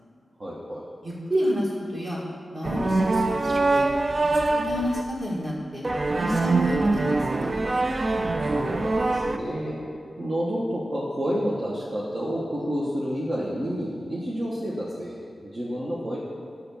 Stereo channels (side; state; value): both; normal; correlation 0.94